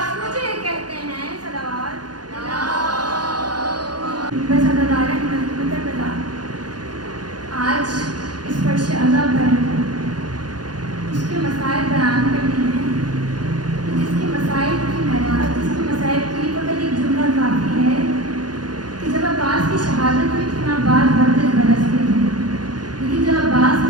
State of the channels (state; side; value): late; left; 0.69 ms